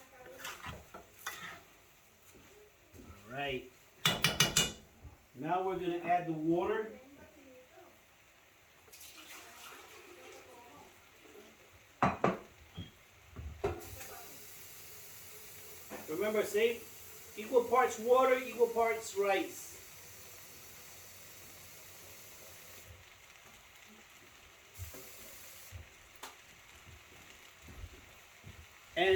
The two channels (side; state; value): both; identical; correlation 1.00